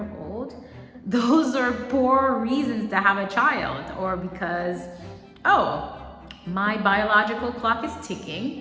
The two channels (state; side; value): identical; both; correlation 1.00